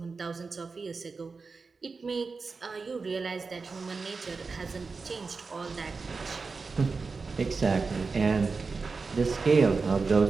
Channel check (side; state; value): left; quieter; 4.4 dB